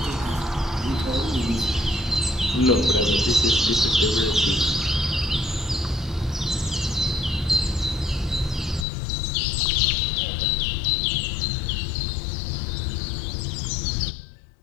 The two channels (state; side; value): drops out; right; at 8.8 s